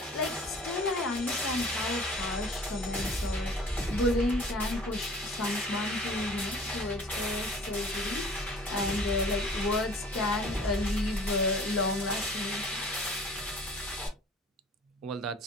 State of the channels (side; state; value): both; normal; correlation 0.48